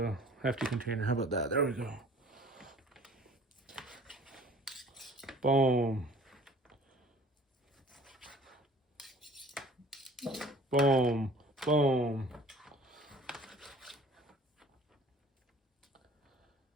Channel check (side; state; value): both; normal; correlation 0.48